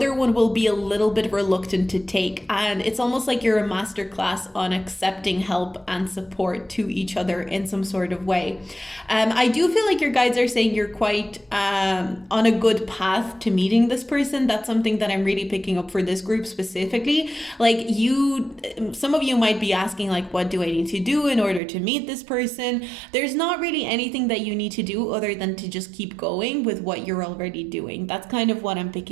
one will be a little bit reluctant to take. And it's almost like you're a master class on accepting help and support to each other in some sort of way. I do feel like your guides are saying you're quite on a good path to meeting this person. That's something that I'm really picking up for this group specifically. Like, some of you might be asking, like, what do I need to do in order to meet this person? There's not really anything that you need to do other than to just keep going with what you're already doing. That's kind of what I'm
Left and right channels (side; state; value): left; drops out; at 21.6 s